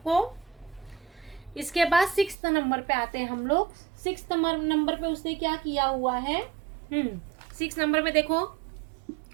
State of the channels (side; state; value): left; drops out; at 2.4 s